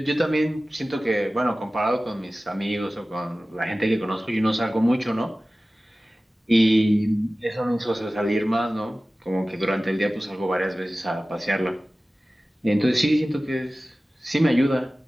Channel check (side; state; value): both; normal; correlation 0.97